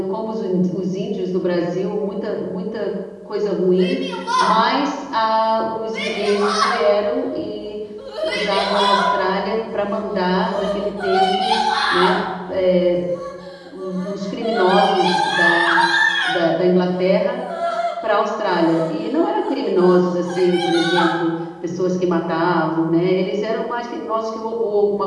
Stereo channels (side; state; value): both; identical; correlation 1.00